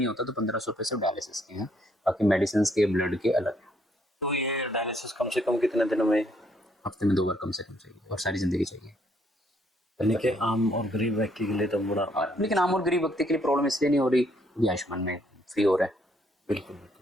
होता तो 1500 रुपये सिर्फ डायलिसिस के हैं, बाकी मेडिसिन के, ब्लड के अलग है। तो ये डायलिसिस कम से कम कितने दिनों में? हफ्ते में 2 बार कम से कम चाहिए, और सारी जिंदगी चाहिए। यानी कि आम और गरीब व्यक्ति के लिए तो बड़ा, लेकिन आम और गरीब व्यक्ति के लिए प्रॉब्लम इसलिए नहीं हो रही, ये आयुष्मान में फ्री हो रहा है। बिल्कुल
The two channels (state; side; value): normal; both; correlation 0.69